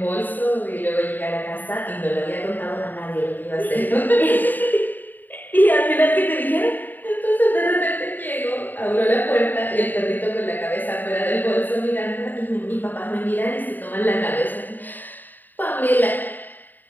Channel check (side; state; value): right; late; 0.089 ms